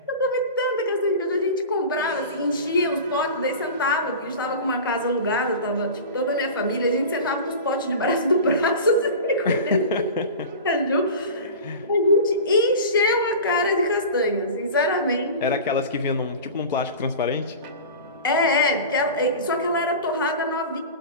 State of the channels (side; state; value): both; inverted; correlation -0.33